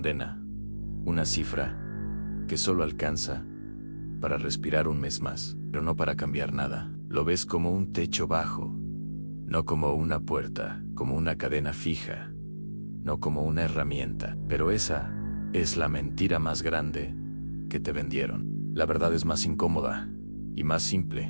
una cifra que solo alcanza para respirar un mes más, pero no para cambiar nada. Lo ves como un techo bajo, no como una puerta, como una cadena fija, no como una herramienta. Pero esa es la mentira más grande que te vendieron. La verdad es más incómoda y más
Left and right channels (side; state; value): both; inverted; correlation -1.00